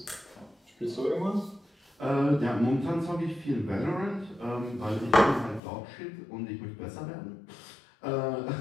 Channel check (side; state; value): right; drops out; at 5.6 s